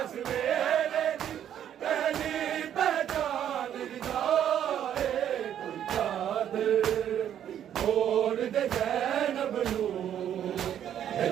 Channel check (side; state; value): left; quieter; 10.1 dB